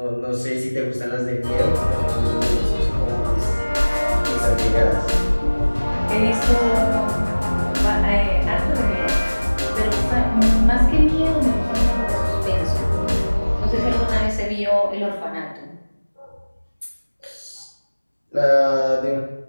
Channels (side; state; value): both; inverted; correlation -1.00